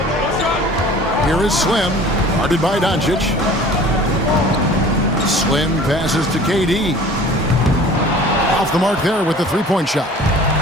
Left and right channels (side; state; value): both; normal; correlation 0.46